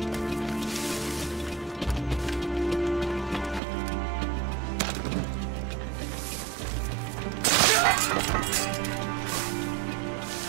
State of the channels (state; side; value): drops out; left; at 3.6 s